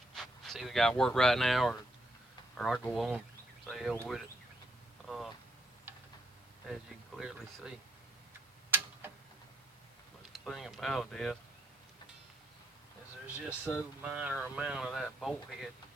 It's either got to work right now or I go on, say hell with it. As you can clearly see. But the thing about it is there's just so minor amount of that bolt head,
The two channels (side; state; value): both; normal; correlation 0.74